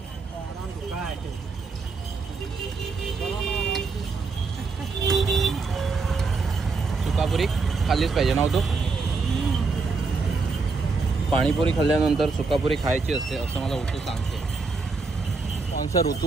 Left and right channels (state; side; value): quieter; left; 4.3 dB